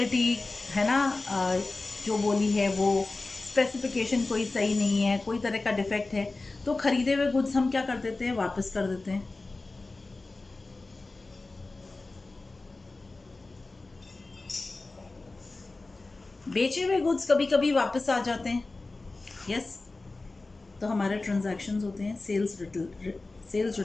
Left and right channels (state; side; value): quieter; right; 3.4 dB